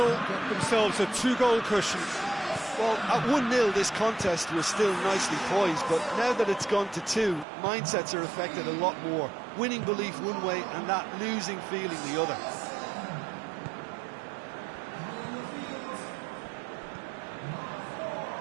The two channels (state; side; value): drops out; left; at 7.5 s